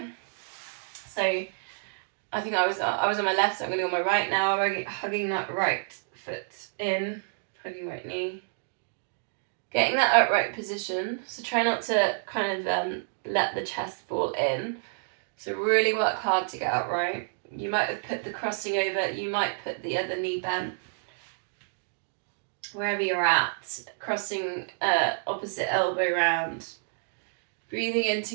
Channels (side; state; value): left; silent; digital silence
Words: So I think I was on my left, so I'm going to go on my right now. I'm hugging that right foot in, hugging right knee. Getting that upright position, so try not to kind of let the chest fall in. So really work hard to get upright. You might have put the crossing over, you might put the other knee bent. Wherever you're at, crossing opposite elbow round. Breathing in